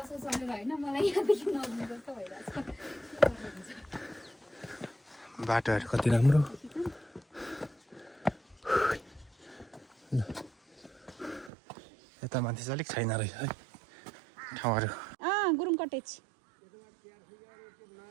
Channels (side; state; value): left; drops out; at 11.5 s